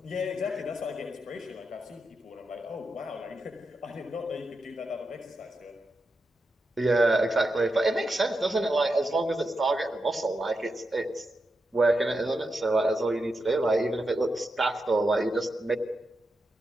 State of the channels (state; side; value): normal; both; correlation 0.87